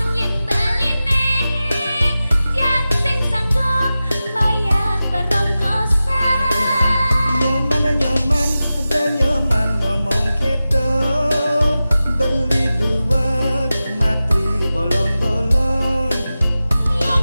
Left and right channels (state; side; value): inverted; both; correlation -0.95